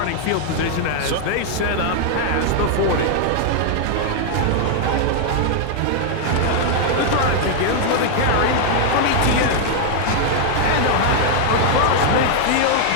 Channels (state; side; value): different; both; correlation 0.00